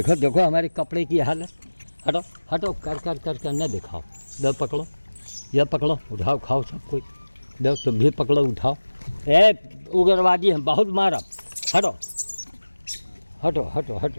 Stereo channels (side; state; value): both; inverted; correlation -1.00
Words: देखो हमारे कपड़े की हालत। हटो हटो, कर कर कर कर न दिखाओ। लो पकड़ो, यह पकड़ो, उठाओ, खाओ सब कोई। लो तुम भी पकड़ो, उठाओ। ए उग्रवादी हम बहुत मारब। हटो हटो हटो